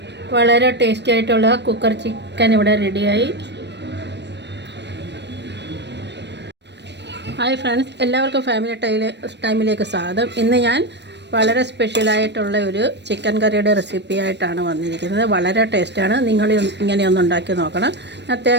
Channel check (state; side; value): late; left; 0.50 ms